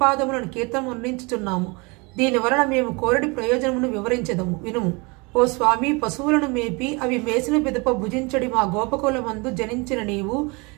కీర్తనం అందించుచున్నాము. దీని వలన మేము కోరడి ప్రయోజనమును వివరించదము వినుము. ఓ స్వామి, పశువులను మేపి అవి మేసిన పిదప భుజించడి మా గోపకులమందు జనించిన నీవు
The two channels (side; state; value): left; quieter; 28.4 dB